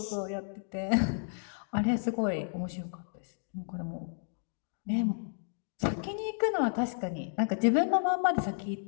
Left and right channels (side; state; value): right; silent; digital silence